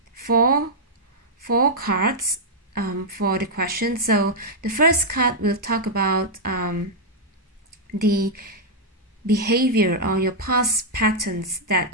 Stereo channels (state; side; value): normal; both; correlation -0.05